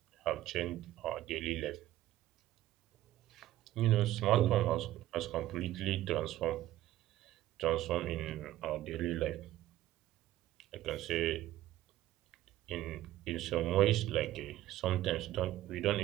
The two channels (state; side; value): quieter; left; 14.5 dB